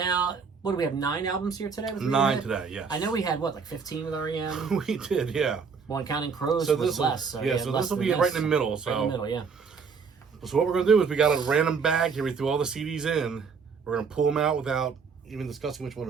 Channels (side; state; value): left; quieter; 5.6 dB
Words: what do we have, 9 albums here today? 9 today, yes. I know we had, like 15 with REM? We did, yeah. Well, and Counting Crows was less. So this will be right in the middle. So. Right in the middle, yeah. So what we're going to do is we got a random bag here. We threw all the CDs in. We're going to pull them out without even discussing which one